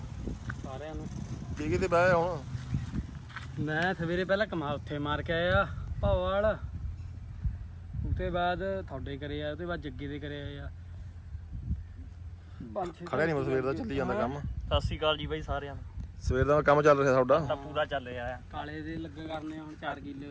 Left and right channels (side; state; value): both; identical; correlation 1.00